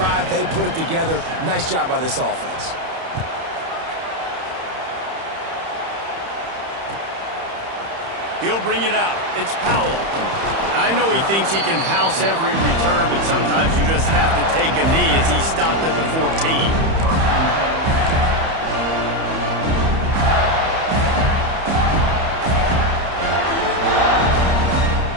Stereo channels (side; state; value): left; late; 31 ms